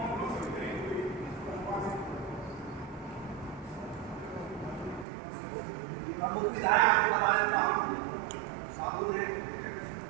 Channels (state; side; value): drops out; left; at 5.1 s